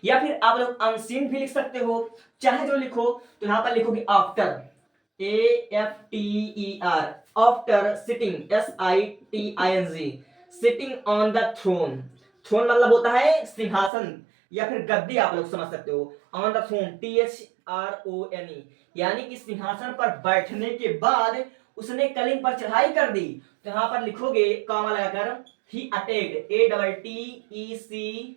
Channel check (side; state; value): left; drops out; at 13.9 s